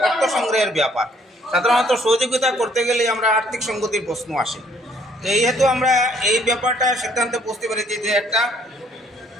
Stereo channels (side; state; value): both; normal; correlation 0.63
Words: অর্থ সংগ্রহের ব্যাপার, সাধারণত সহযোগিতা করতে গেলে আমরা আর্থিক সঙ্গতির প্রশ্ন আসে। তো এই হেতু আমরা এই ব্যাপারটা সিদ্ধান্তে পৌঁছতে পেরেছি যে একটা